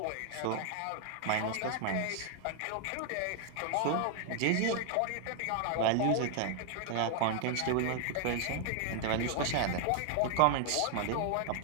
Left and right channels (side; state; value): both; different; correlation 0.00